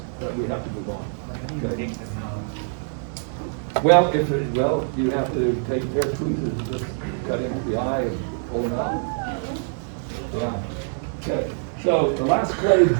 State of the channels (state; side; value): silent; left; 62 dB below the other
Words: but we have to move on. Okay. Well, you have to take a pair of tweezers and just cut into the eye and pull them out. Yeah. Okay. So the last clade